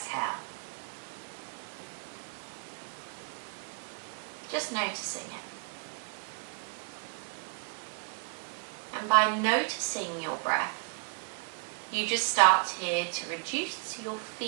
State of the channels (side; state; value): left; quieter; 39.6 dB